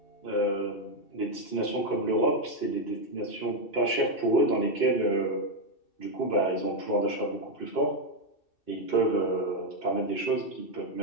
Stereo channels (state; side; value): late; right; 2.6 ms